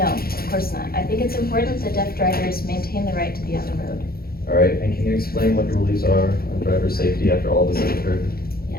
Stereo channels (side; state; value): right; late; 0.44 ms